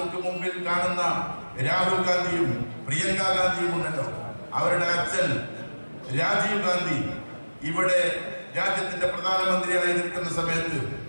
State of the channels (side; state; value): both; inverted; correlation -1.00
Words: മുമ്പിൽ കാണുന്ന രാഹുൽ ഗാന്ധിയും പ്രിയങ്ക ഗാന്ധിയും ഉണ്ടല്ലോ, അവരുടെ അച്ഛൻ രാജീവ് ഗാന്ധി ഇവിടെ രാജ്യത്തിന്റെ പ്രധാനമന്ത്രിയായി നിൽക്കുന്ന സമയത്ത്